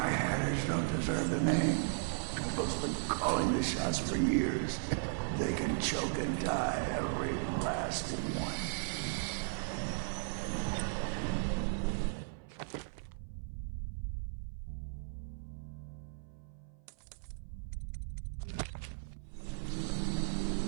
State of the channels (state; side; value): silent; left; 54 dB below the other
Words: hatters, don't deserve the name. Trimble's been calling the shots for years. They can choke and die, every last one.